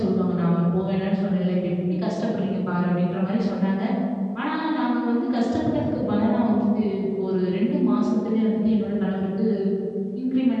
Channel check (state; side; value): identical; both; correlation 1.00